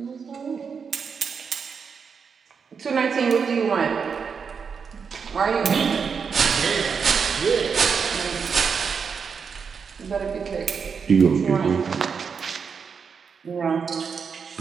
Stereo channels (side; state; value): left; quieter; 6.0 dB